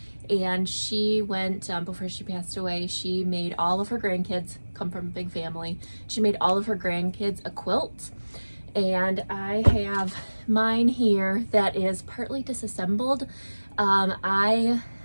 and she went, before she passed away, she made all of her grandkids, come from a big family, she made all of her grandkids a quilt. And I have mine here that is partly disassembled. I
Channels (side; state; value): both; inverted; correlation -1.00